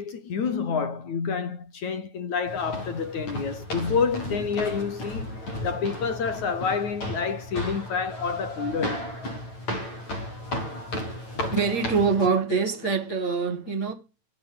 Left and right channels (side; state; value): right; late; 8.6 ms